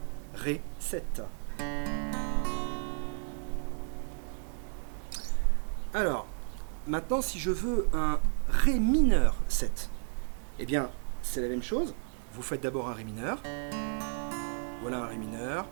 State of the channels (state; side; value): silent; left; 56 dB below the other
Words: Ré 7. Alors, maintenant, si je veux un Ré mineur 7, eh bien, c'est la même chose. Vous faites d'abord un Ré mineur. Voilà un Ré mineur